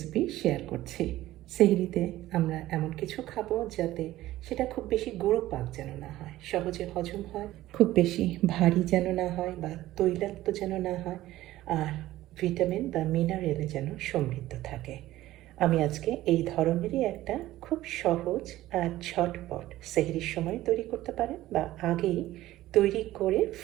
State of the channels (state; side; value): quieter; left; 15.5 dB